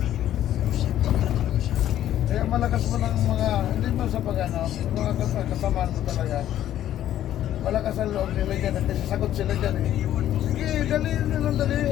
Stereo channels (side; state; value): right; quieter; 12.0 dB